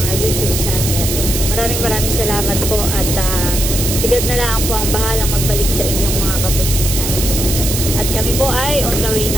YouTube channel. Maraming salamat po at sigad na lang po ang bahalang magbalik sa inyong mga kabutihan. At kami po ay on the way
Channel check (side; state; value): right; noise; hiss, 2 dB below the sound